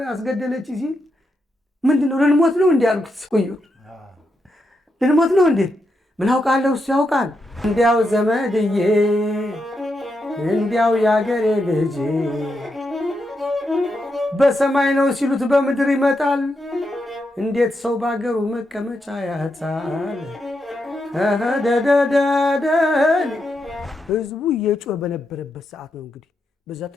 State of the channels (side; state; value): both; normal; correlation 0.84